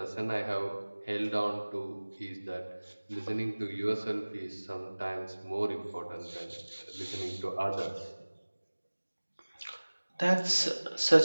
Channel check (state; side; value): inverted; both; correlation -1.00